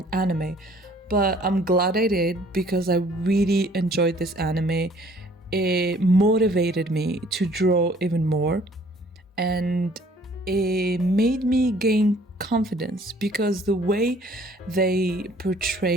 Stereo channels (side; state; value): both; normal; correlation 0.57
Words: anime. But I'm glad I did because I really enjoyed this anime. It motivated me to draw even more, and it made me gain confidence because the way they